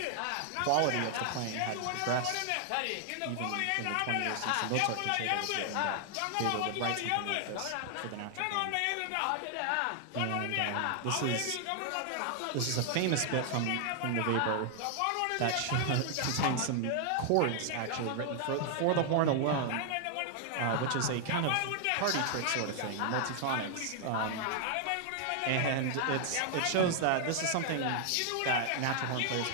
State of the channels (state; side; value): different; both; correlation 0.00